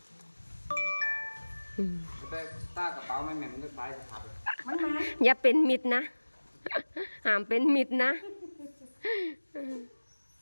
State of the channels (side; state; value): both; inverted; correlation -1.00